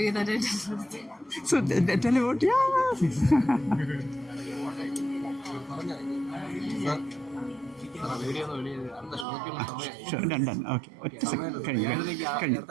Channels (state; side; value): drops out; left; at 9.2 s